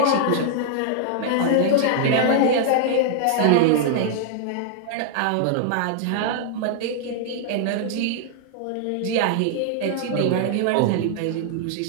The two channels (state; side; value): different; both; correlation -0.01